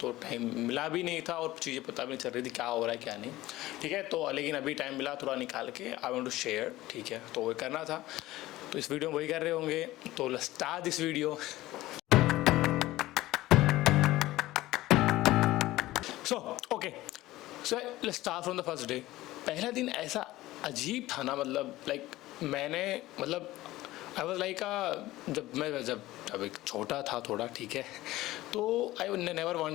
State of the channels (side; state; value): right; quieter; 17.0 dB